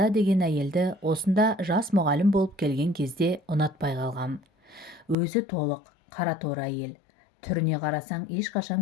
деген әйелді осында жас мұғалім болып келген кезде ұнатпай қалғам. Өзі толық, қара торы әйел. Түріне қарасаң ешқашан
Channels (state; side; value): drops out; right; at 5.2 s